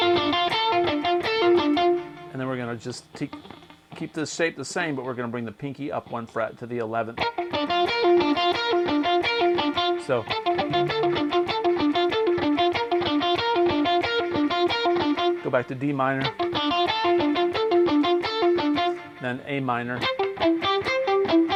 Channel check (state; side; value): identical; both; correlation 1.00